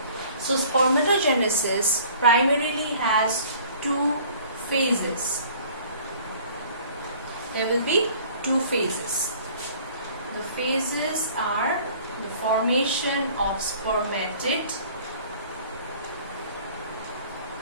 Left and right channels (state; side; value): inverted; both; correlation -0.51